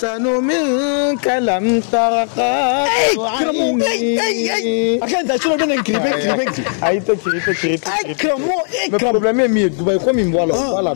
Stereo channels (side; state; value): right; silent; 69 dB below the other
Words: منك لم ترقى عيني أكيد شنو بدنا نكري أي تكري كرمو le problème est mieux Dubaï comme il voilà